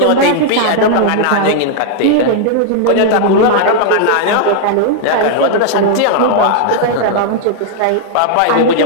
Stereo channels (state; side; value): different; both; correlation 0.00